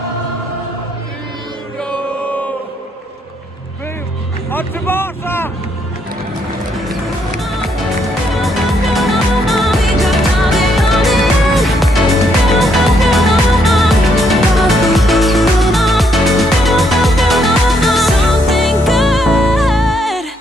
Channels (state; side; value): normal; both; correlation 0.73